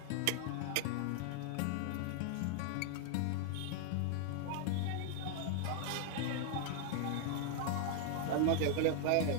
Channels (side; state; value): both; different; correlation 0.00